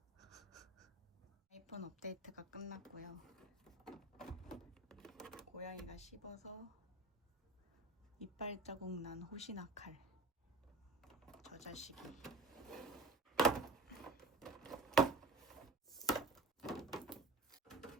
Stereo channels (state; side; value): quieter; left; 3.1 dB